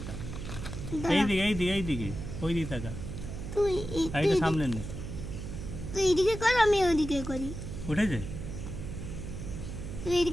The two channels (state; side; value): noise; right; hum, 8 dB below the sound